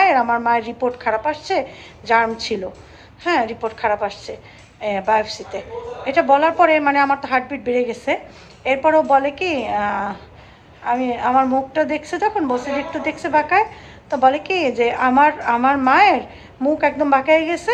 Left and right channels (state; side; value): identical; both; correlation 1.00